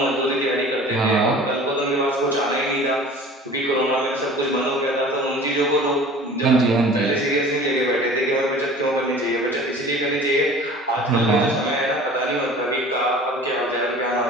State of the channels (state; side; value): normal; both; correlation 0.44